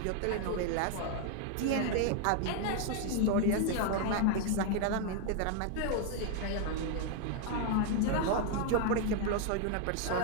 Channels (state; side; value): different; both; correlation 0.00